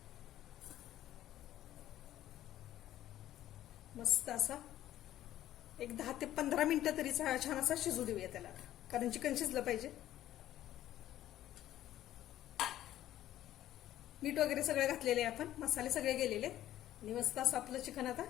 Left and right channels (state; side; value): quieter; right; 13.1 dB